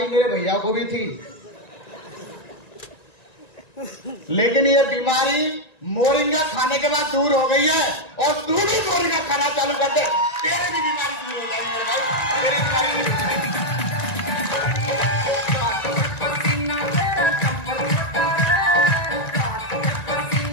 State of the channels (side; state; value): right; late; 1.9 ms